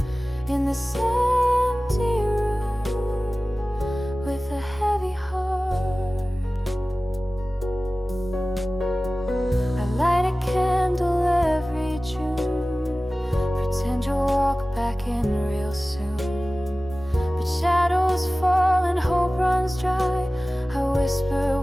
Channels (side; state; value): both; normal; correlation 0.97